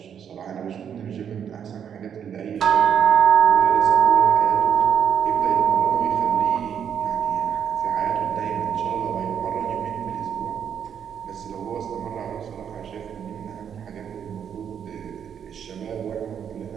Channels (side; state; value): left; quieter; 8.3 dB